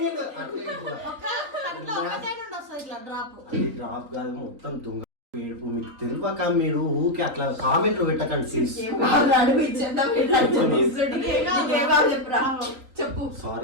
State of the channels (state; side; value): late; left; 3.7 ms